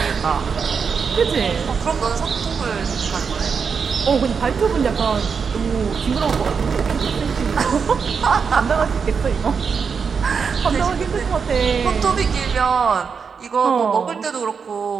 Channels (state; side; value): quieter; left; 5.9 dB